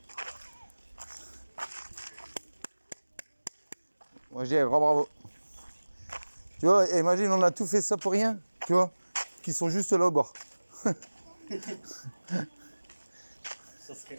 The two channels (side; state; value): both; inverted; correlation -1.00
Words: Moi je dis un grand bravo. Tu vois, imagine on a tout fait ça pour rien, tu vois, qui sont juste là au bord. Ça